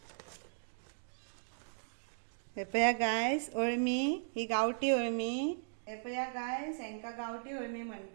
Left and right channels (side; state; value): left; silent; digital silence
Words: हे पया गाइस, अळमी ही गावठी अळमी. हे पया गाइस, हेंका गावठी अळमी